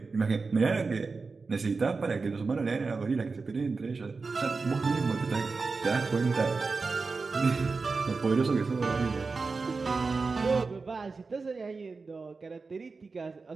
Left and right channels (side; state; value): left; quieter; 4.3 dB